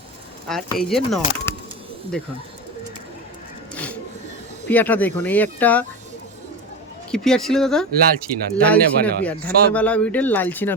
আর এই যে নর, দেখুন পিয়াটা দেখুন। এই একটা কি পিয়ার ছিল দাদা? লাল চীনা, লাল চীনা ধান্যওয়ালা পিয়ার, সব ধান্যওয়ালা ব্রিডের লাল চীনা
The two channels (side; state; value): both; normal; correlation 0.22